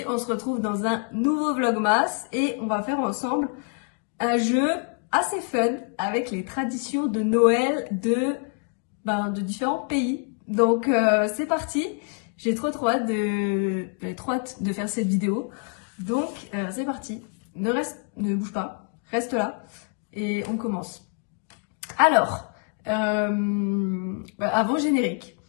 on se retrouve dans un nouveau vlogmas et on va faire ensemble un jeu assez fun avec les traditions de Noël de différents pays. Donc c'est parti, j'ai trop hâte de faire cette vidéo. Donc c'est parti, ne bouge pas, reste là et on commence. Alors, avant générique.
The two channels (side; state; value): right; quieter; 38.5 dB